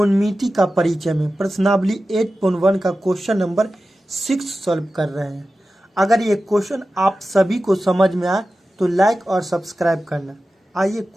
का परिचय में प्रश्नावली 8.1 का क्वेश्चन नंबर 6 सॉल्व कर रहे हैं। अगर ये क्वेश्चन आप सभी को समझ में आए तो लाइक और सब्सक्राइब करना। आइए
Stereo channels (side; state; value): both; normal; correlation 0.94